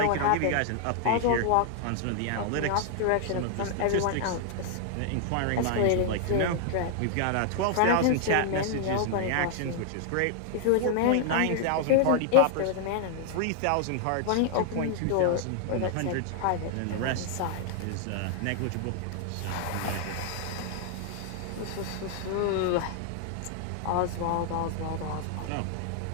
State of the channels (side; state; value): both; different; correlation 0.00